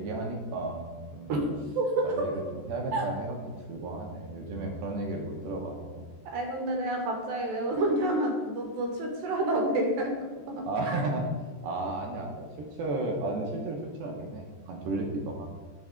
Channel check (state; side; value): late; left; 14 ms